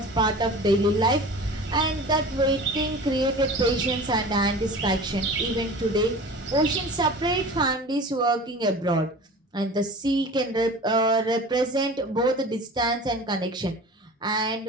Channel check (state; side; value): normal; both; correlation 0.38